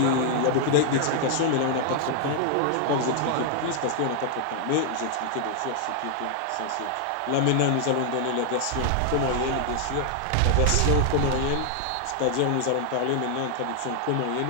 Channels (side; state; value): both; different; correlation 0.00